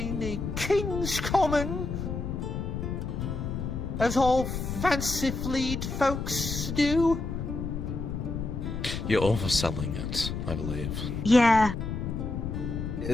the King's Common, as all fancy-fleed folks do. You're overselling it, I believe. Yeah.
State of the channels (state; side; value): noise; left; rumble, 4 dB below the sound